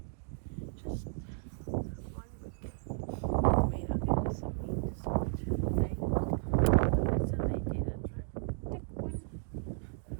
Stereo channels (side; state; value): left; silent; digital silence